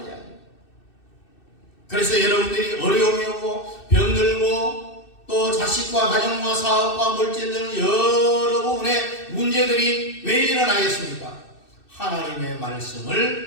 이야기입니다. 그래서 여러분들이 어려움이 오고 병들고 또 자식과 가정과 사업과 물질 등 여러 부분의 문제들이 왜 일어나겠습니까? 하나님의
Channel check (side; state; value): right; late; 2.6 ms